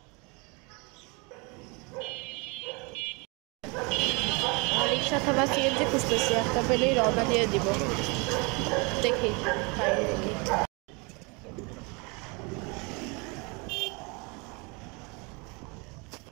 রিক্সা অথবা সিএনজি খুঁজতেছি, একটা পেলেই রওনা দিয়ে দিব। দেখি পাই নাকি।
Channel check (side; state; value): left; quieter; 29.7 dB